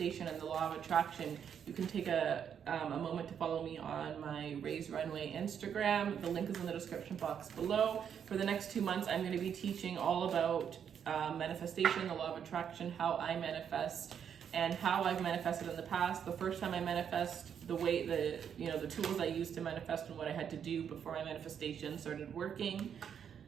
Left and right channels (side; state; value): left; quieter; 8.1 dB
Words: and the law of attraction, you can take a moment to follow me on my Raise Runway Instagram. The link is in the description box below. For the next 2 months, I'm going to be teaching all about manifestation, the law of attraction, how I manifest, and how I've manifested in the past. The first time I manifest, the tools I used to manifest and what I had to do before my manifestation started working.